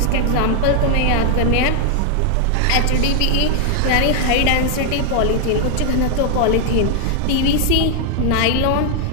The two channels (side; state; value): both; different; correlation 0.00